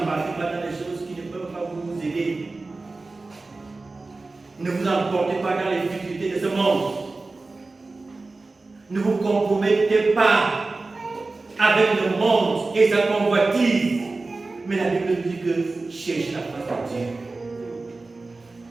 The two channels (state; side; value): quieter; left; 3.5 dB